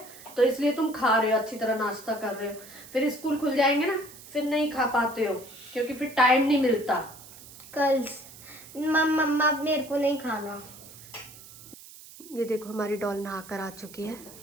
तो इसलिए तुम खा रहे हो, अच्छी तरह नाश्ता कर रहे हो। फिर स्कूल खुल जाएंगे ना, फिर नहीं खा पाते हो, क्योंकि फिर टाइम नहीं मिलता। कल मम्मा मेरे को नहीं खाना। ये देखो हमारी डॉल नहा कर आ चुकी है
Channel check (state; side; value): noise; right; hiss, 18 dB below the sound